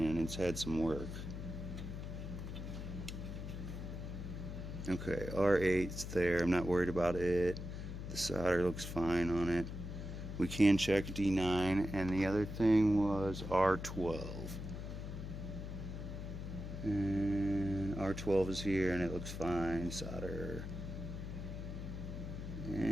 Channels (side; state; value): left; noise; hum, 7 dB below the sound